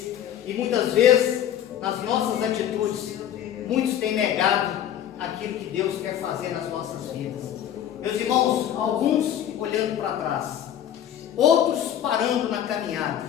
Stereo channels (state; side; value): quieter; right; 10.5 dB